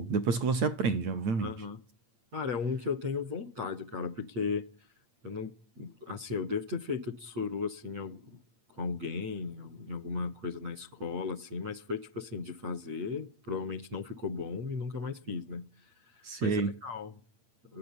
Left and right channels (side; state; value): left; late; 8.7 ms